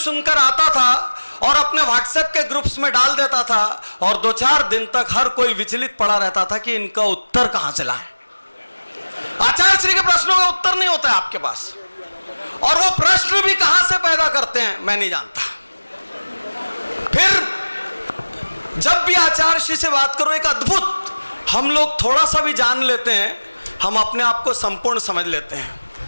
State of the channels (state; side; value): inverted; both; correlation -1.00